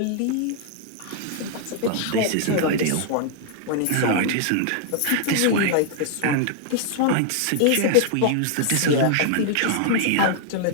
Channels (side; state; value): both; different; correlation 0.00